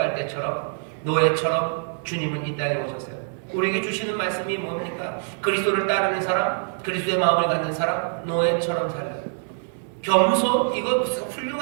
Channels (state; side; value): silent; left; 62 dB below the other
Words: 때처럼 노예처럼 주님은 이 땅에 오셨어요. 우리에게 주시는 말씀이 뭡니까? 그리스도를 따르는 사람, 그리스도의 마음을 갖는 사람, 노예처럼 살아요. 겸손? 이거 무슨